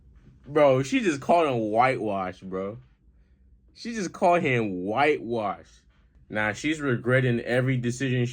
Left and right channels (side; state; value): both; identical; correlation 1.00